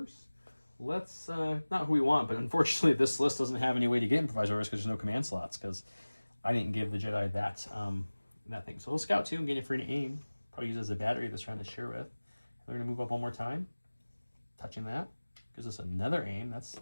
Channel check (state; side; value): inverted; both; correlation -1.00